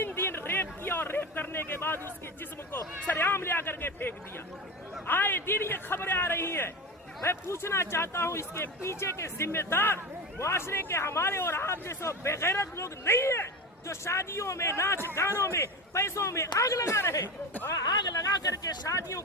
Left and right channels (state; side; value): normal; both; correlation 0.24